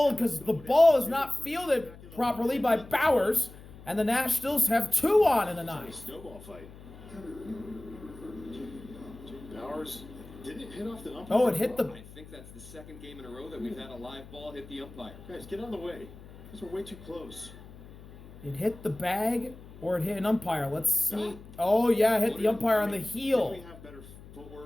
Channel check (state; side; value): noise; left; hum, 18 dB below the sound